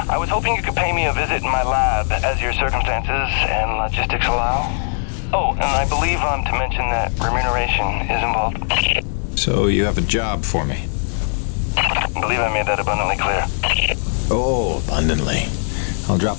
I was hoping you could pay me a visit in my lab as your circumstances and logistics allow. Oh, and I believe I'm to mention that remuneration is involved. So you have a job for me? I believe I made that abundantly clear. Oh, abundantly. I'll drop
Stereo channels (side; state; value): right; silent; digital silence